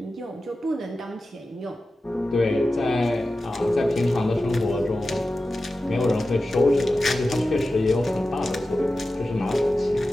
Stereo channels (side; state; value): both; normal; correlation 0.94